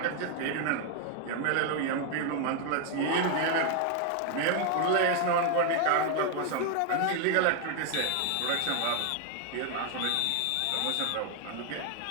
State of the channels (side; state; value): both; different; correlation 0.00